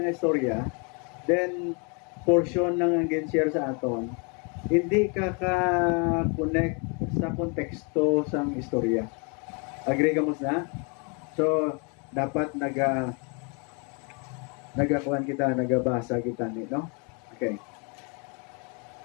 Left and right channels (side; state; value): right; quieter; 34.5 dB